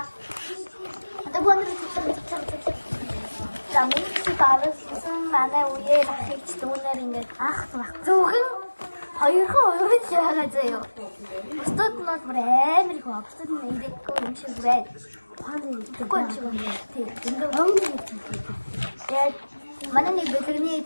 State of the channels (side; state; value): both; inverted; correlation -1.00